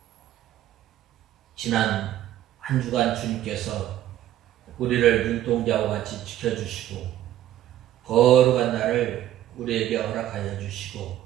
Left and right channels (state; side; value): quieter; left; 12.8 dB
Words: 지난 한 주간 주님께서 우리를 눈동자와 같이 지켜주시고 거룩한 날을 우리에게 허락하여 주시고